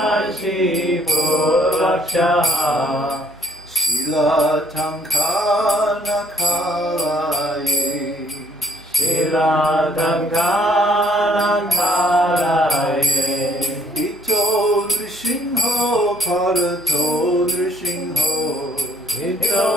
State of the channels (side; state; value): right; noise; hum, 29 dB below the sound